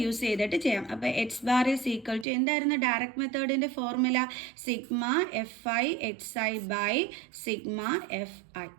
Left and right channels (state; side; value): drops out; left; at 2.2 s